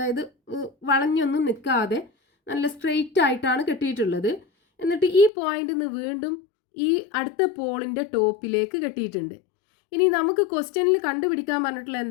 വളഞ്ഞൊന്നും നിൽക്കാതെ നല്ല സ്ട്രെയിറ്റ് ആയിട്ടാണ് കെട്ടിയിട്ടുള്ളത്. എന്നിട്ട് ഈ പോയിന്റിൽ നിന്ന് വീണ്ടും ഈ അടുത്ത പോളിൻ്റെ ടോപ്പിലേക്ക് കെട്ടിയിട്ടുണ്ട്. ഇനി നമുക്ക് ക്വസ്റ്റ്യനിൽ കണ്ടുപിടിക്കാൻ പറഞ്ഞിട്ടുള്ള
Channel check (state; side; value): drops out; right; at 5.3 s